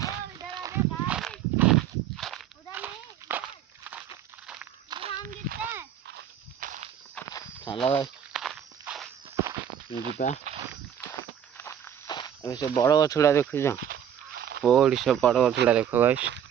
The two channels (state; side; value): quieter; left; 9.3 dB